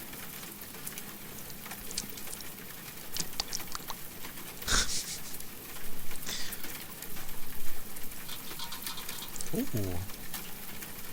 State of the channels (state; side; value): identical; both; correlation 1.00